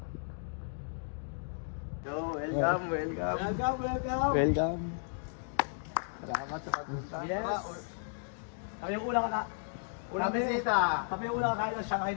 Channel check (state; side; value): silent; right; digital silence